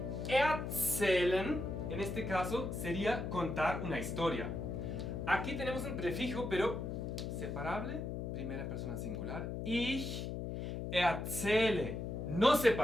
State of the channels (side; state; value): left; noise; hum, 4 dB below the sound